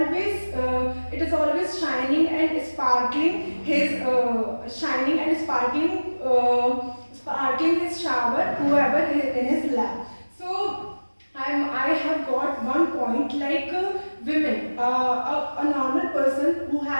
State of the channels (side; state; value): both; inverted; correlation -1.00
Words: shining and sparkling his sparkling his shower whoever is in his lap. So I have got one point like women, a normal person who